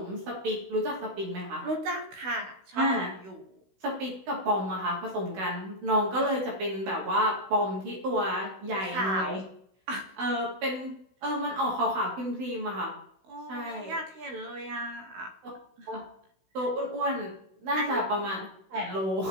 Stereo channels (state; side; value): late; left; 16 ms